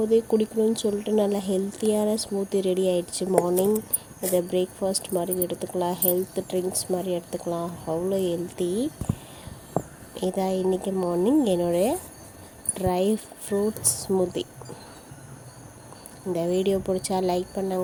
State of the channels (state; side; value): identical; both; correlation 1.00